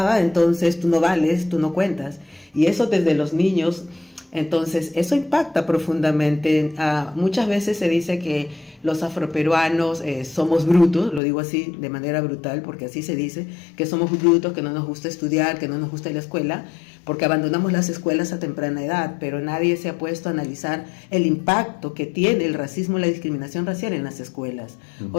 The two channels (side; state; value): right; drops out; at 11.2 s